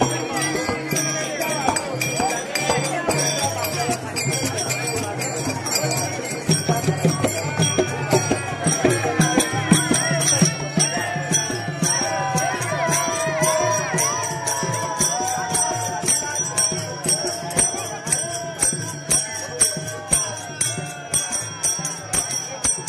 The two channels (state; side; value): identical; both; correlation 1.00